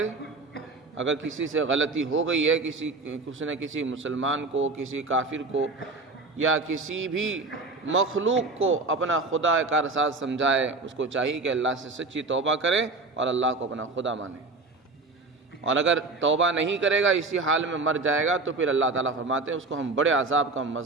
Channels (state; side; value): quieter; left; 3.5 dB